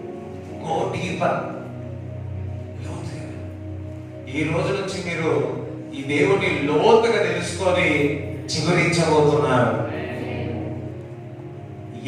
Go deeper. ఈ రోజు నుంచి మీరు ఈ దేవుని లోతుగా తెలుసుకొని చిగురించబోతున్నారు.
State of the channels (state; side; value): identical; both; correlation 1.00